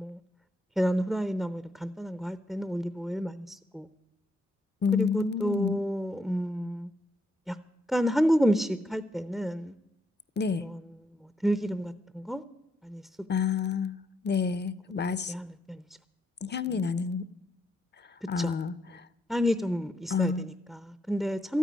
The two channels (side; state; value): both; normal; correlation 0.78